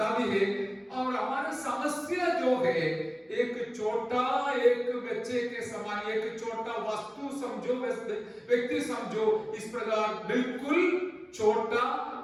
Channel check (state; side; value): identical; both; correlation 1.00